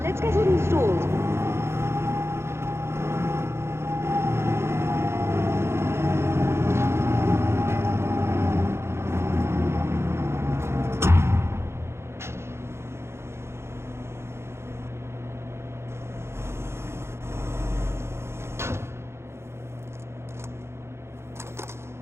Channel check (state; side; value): late; left; 0.12 ms